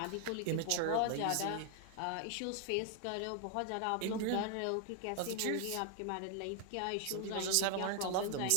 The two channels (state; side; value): different; both; correlation 0.00